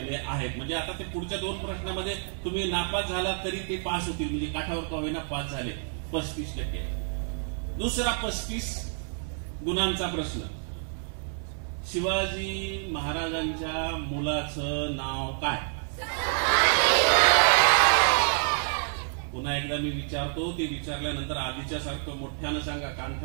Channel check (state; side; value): silent; left; 58 dB below the other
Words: आहेत. म्हणजे आता ते पुढच्या 2 प्रश्नामध्ये तुम्ही नापास झालात तरी ते पास होतील. म्हणजे काठावर का होईना पास झाले. 35%. दुसरा 35 गुणांचा प्रश्न, शिवाजी महाराजांच्या मुलाचं नाव काय? पुन्हा एकदा मी विचारतो, ते विचारल्यानंतर आधीच्या सारखं मोठ्यानं सांगा,